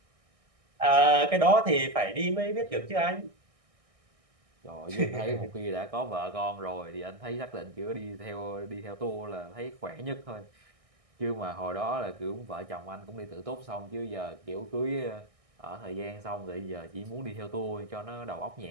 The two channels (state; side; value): late; left; 1.6 ms